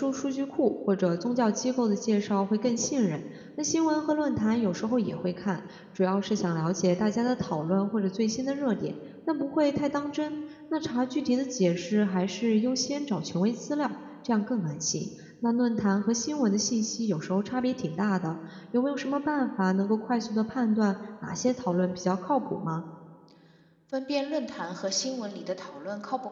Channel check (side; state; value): both; identical; correlation 1.00